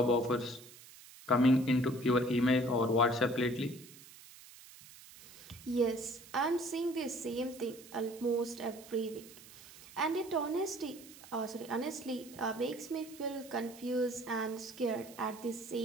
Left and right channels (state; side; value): noise; right; hiss, 19 dB below the sound